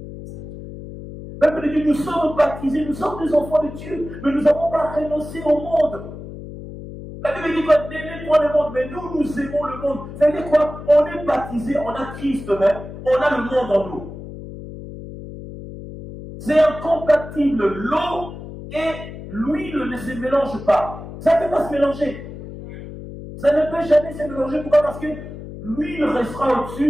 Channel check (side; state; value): left; noise; hum, 12 dB below the sound